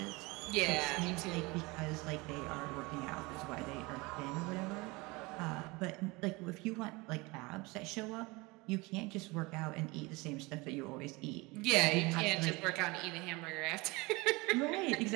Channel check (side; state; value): left; quieter; 24.4 dB